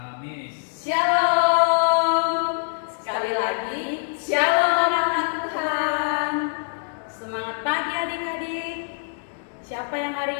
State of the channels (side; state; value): right; silent; digital silence